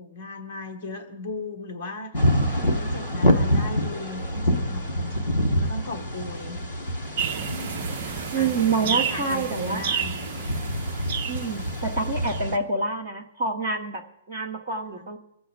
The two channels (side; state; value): both; inverted; correlation -0.54